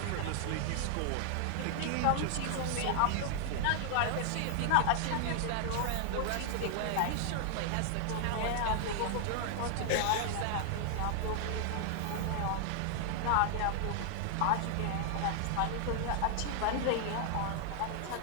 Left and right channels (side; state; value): both; different; correlation 0.00